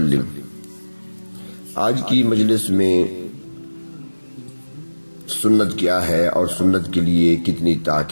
آج کی مجلس میں سنت کیا ہے اور سنت کے لیے کتنی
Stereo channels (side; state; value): both; inverted; correlation -1.00